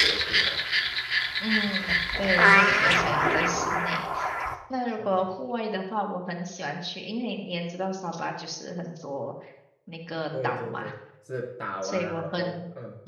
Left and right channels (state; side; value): identical; both; correlation 1.00